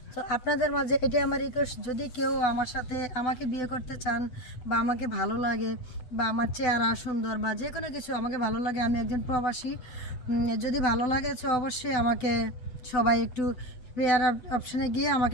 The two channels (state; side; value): late; right; 8.1 ms